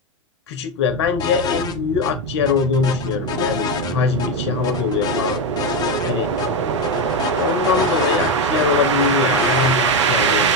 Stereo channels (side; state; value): both; normal; correlation 0.10